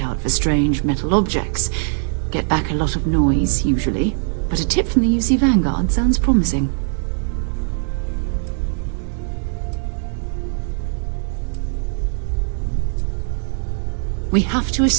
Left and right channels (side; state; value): left; silent; 60 dB below the other